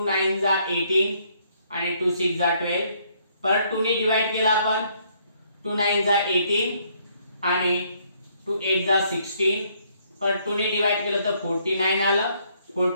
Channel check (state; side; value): inverted; both; correlation -0.68